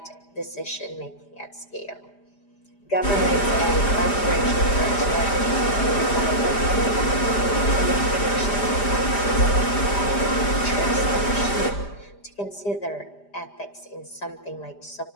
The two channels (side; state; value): right; late; 5.0 ms